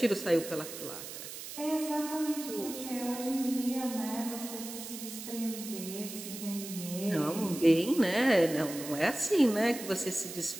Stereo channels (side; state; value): right; noise; hiss, 10 dB below the sound